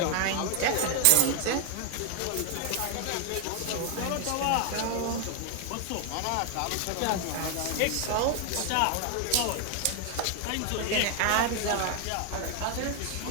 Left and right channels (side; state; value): both; different; correlation 0.00